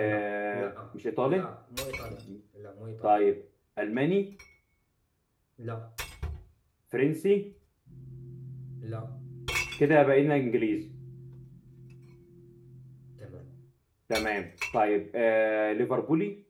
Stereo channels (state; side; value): identical; both; correlation 1.00